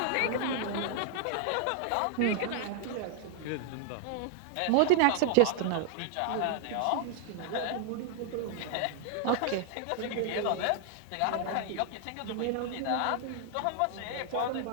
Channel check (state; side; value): different; both; correlation 0.00